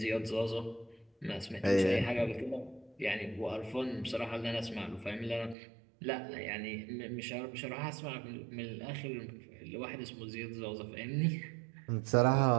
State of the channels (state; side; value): drops out; left; at 5.6 s